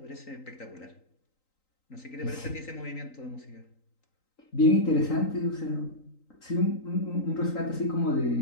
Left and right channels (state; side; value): late; right; 3.9 ms